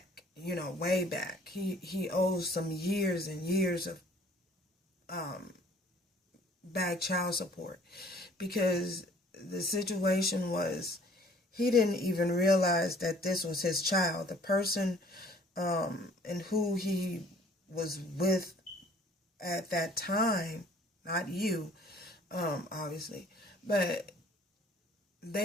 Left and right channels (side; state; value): both; normal; correlation 0.55